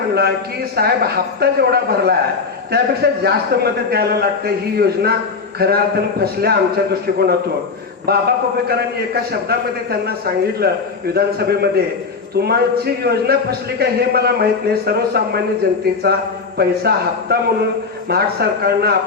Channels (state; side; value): quieter; right; 4.7 dB